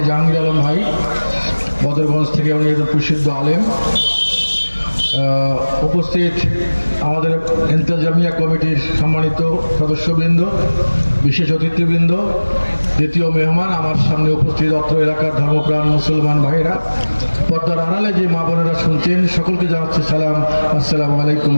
জাহাঙ্গীর আলম ভাই, বদরগঞ্জ থেকে, উনি একজন প্রসিদ্ধ আলেম। উপস্থিত আমাদের ইন্তেজামিয়া কমিটির সম্মানিত সদস্যবৃন্দ, বিশেষ অতিথিবৃন্দ, দ্বিতীয় মেহমান আমার সামনে উপস্থিত অত্র এলাকার ধর্মপ্রাণ মুসলমান ভাইরা, পর্দার আড়ালে যে মা বোনেরা শুনছেন, সকলকে জানাচ্ছি সালাম, আসসালামু আলাইকুম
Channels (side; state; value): both; inverted; correlation -1.00